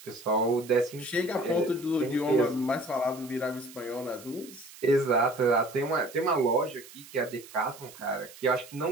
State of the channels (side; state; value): right; noise; hiss, 19 dB below the sound